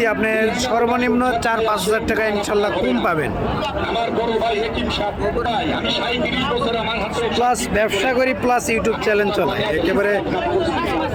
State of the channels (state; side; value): identical; both; correlation 1.00